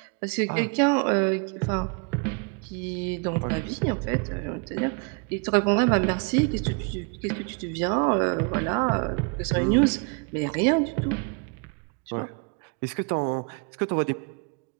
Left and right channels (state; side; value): quieter; left; 35.1 dB